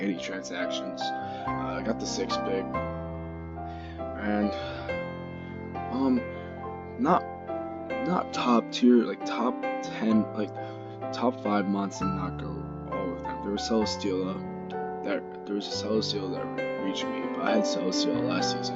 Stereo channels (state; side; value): identical; both; correlation 1.00